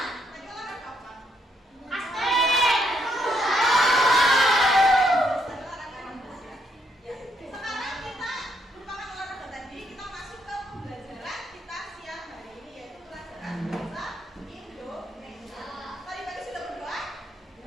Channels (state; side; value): normal; both; correlation 0.75